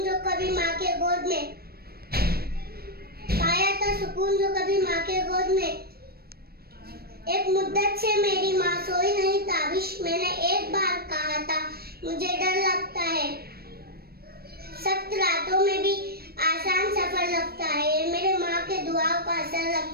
जो कभी माँ के गोद में, पाया था सुकून जो कभी माँ के गोद में। एक मुद्दत से मेरी माँ सोई नहीं ताबिश, मैंने एक बार कहा था मुझे डर लगता है। सख्त रातों में भी आसान सफर लगता है, मेरे माँ के दुआओं का असर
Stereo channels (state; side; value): late; left; 0.45 ms